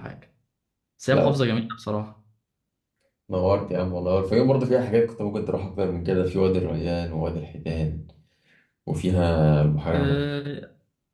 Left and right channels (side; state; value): both; identical; correlation 1.00